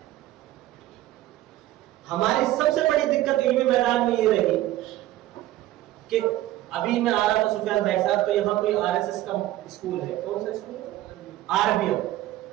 ہماری سب سے بڑی دقت علمی میدان میں یہ رہی کہ ابھی میں آ رہا تھا سفیان بھائی صاحب, تو یہاں کوئی RSS کا اسکول ہے. کون سا اسکول؟ RBM.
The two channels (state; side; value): quieter; left; 15.2 dB